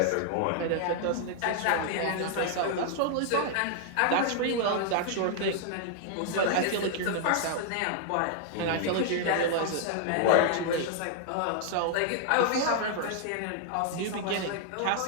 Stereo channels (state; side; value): different; both; correlation -0.01